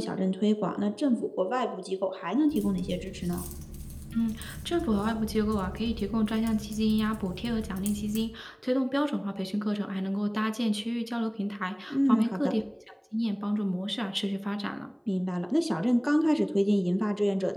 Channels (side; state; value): both; identical; correlation 1.00